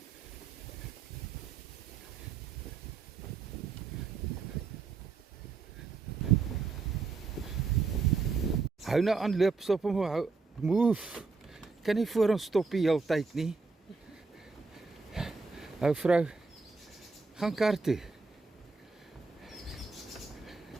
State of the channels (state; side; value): quieter; left; 4.4 dB